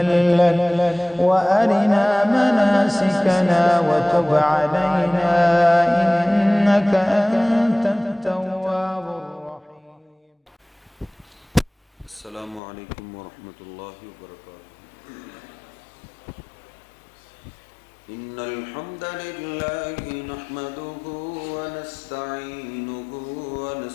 لك وأرنا مناسكنا وتب علينا إنك أنت التواب الرحيم. السلام عليكم ورحمة الله وبركاته. إن الحمد لله نحمده ونستعينه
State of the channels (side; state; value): right; drops out; at 12.6 s